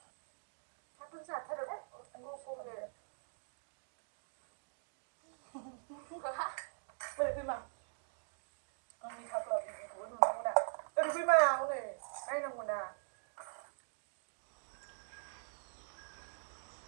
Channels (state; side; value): silent; left; digital silence